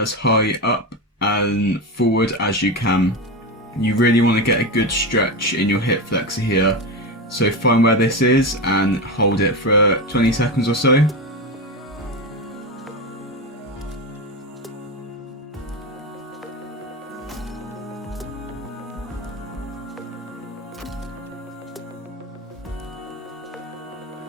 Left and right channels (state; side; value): normal; both; correlation 0.18